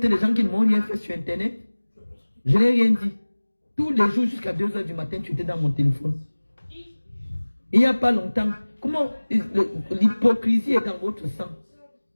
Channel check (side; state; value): both; inverted; correlation -1.00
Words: les gens qui ne m'ont rien fait sur Internet. Je n'ai rien dit. Tous les jours jusqu'à 2 h du matin, tu étais dans mon téléphone. Il n'y a pas longtemps, comment l'hypocrisie est dans votre sang.